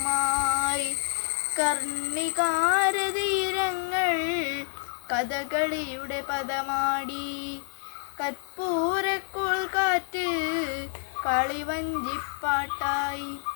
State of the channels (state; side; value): silent; right; 59 dB below the other